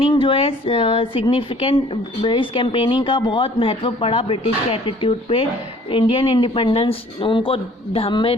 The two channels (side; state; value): both; normal; correlation 0.54